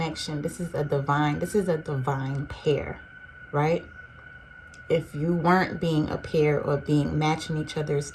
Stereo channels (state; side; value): identical; both; correlation 1.00